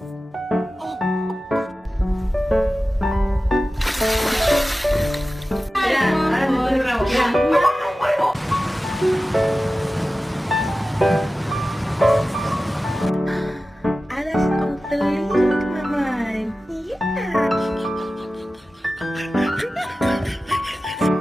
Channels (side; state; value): both; normal; correlation 0.95